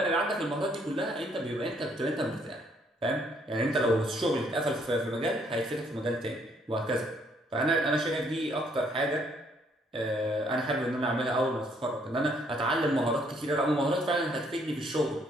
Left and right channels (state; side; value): normal; both; correlation 0.67